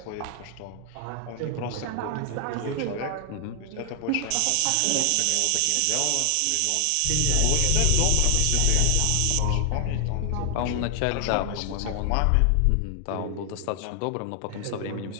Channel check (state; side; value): different; both; correlation 0.00